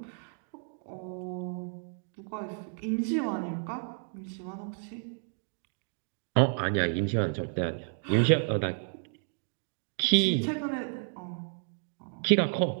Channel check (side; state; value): left; silent; 57 dB below the other